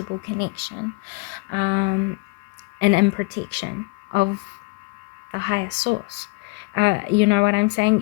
connection, and in protection of the highest source. You know what I'm saying?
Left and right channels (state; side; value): quieter; right; 27.8 dB